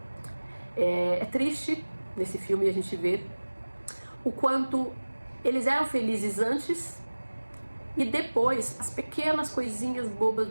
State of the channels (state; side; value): inverted; both; correlation -1.00